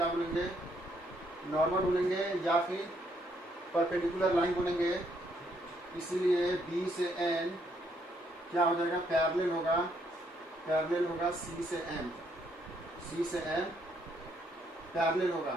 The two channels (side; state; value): both; normal; correlation 0.72